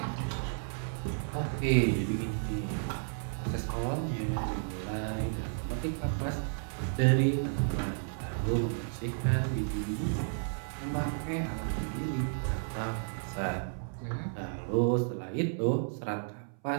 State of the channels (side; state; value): left; silent; 56 dB below the other